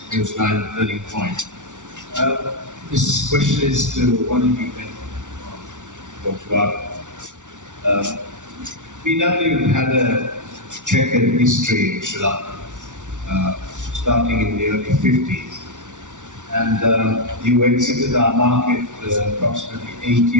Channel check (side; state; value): left; late; 0.86 ms